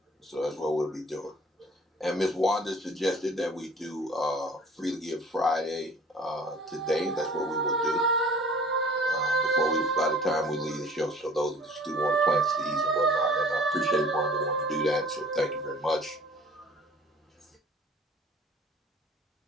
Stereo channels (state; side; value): normal; both; correlation 0.49